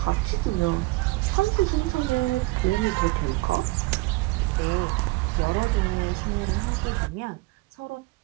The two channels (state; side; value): quieter; left; 22.2 dB